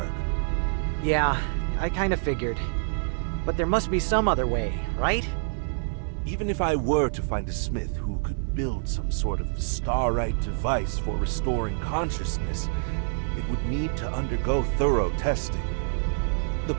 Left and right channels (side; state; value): left; silent; digital silence